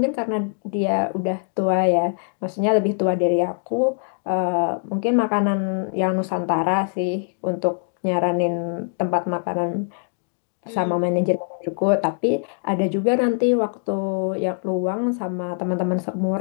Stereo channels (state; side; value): silent; right; digital silence